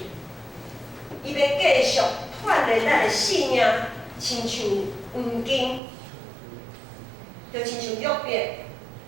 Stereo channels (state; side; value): drops out; left; at 5.8 s